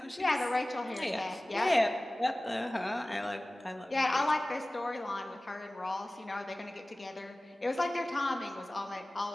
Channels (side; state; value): both; normal; correlation 0.98